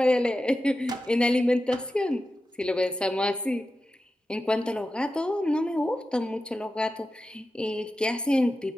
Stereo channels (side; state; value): both; normal; correlation 0.92